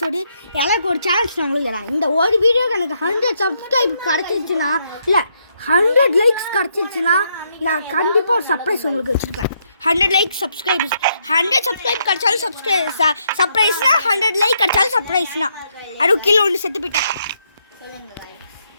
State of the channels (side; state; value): both; inverted; correlation -0.76